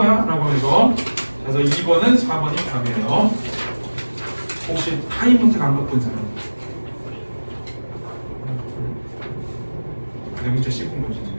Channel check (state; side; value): inverted; both; correlation -1.00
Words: 라고 해서. 그래서 2번은 4번이 답이에요. 혹시 타임노트 안 바꾼 사람? 내 문제 씹은 거지.